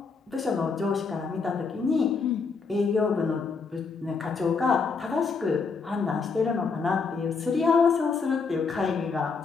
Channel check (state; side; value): quieter; right; 4.9 dB